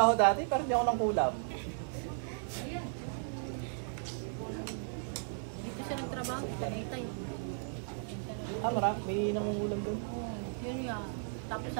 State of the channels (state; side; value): silent; left; digital silence